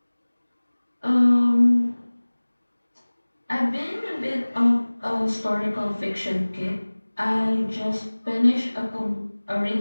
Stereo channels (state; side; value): inverted; both; correlation -1.00